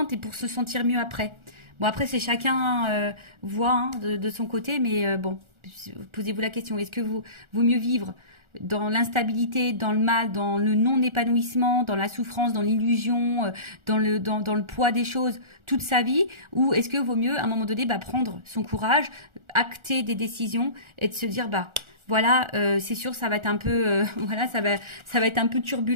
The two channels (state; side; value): late; left; 1.4 ms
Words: et pour se sentir mieux après. Bon, après, c'est chacun voit hein, de son côté, mais bon, posez-vous la question, est-ce que vaut mieux vivre dans l'instabilité, dans le mal, dans le non-épanouissement, dans la souffrance, dans l'illusion, dans le poids des choses toute sa vie, ou est-ce que vaut mieux à un moment donné prendre son courage, acter des décisions et de se dire voilà, c'est sûr, ça va être un peu, voilà, ça va être un peu